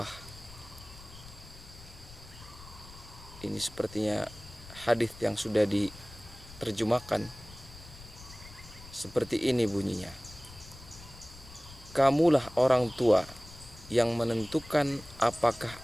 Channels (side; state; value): left; noise; rumble, 18 dB below the sound